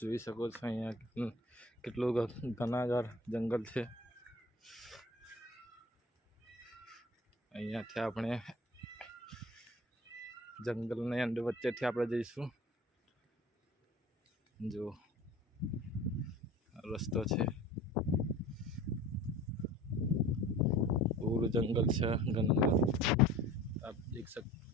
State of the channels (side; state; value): both; normal; correlation 0.42